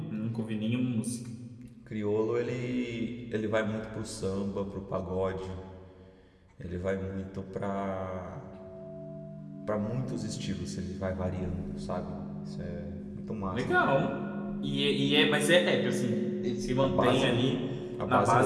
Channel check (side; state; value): both; identical; correlation 1.00